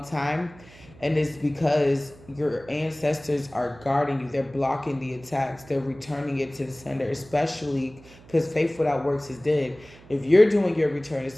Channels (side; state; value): right; noise; hum, 23 dB below the sound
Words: time. And it's because your ancestors are guarding you. They're blocking the attacks. They're returning it to the sender, especially because faith without works is dead. If you're doing your return to